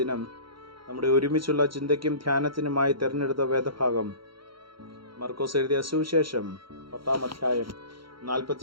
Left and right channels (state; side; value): late; left; 0.73 ms